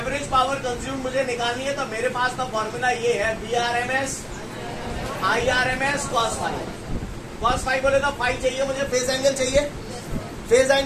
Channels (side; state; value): both; identical; correlation 1.00